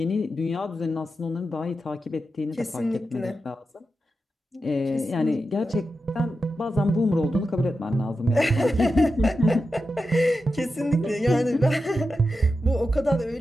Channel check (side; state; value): both; normal; correlation 0.90